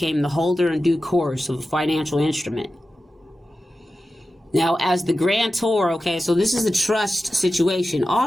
the holder in due course of a financial instrument. Now, as the grantor, okay, so this is a trust situation.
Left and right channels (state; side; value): normal; both; correlation 0.93